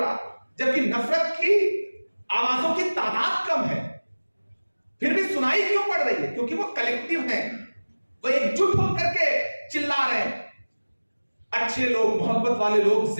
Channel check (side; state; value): both; inverted; correlation -1.00